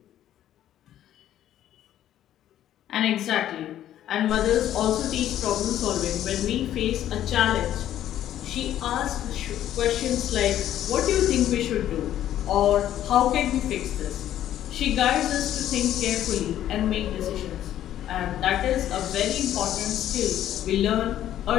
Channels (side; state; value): right; quieter; 11.9 dB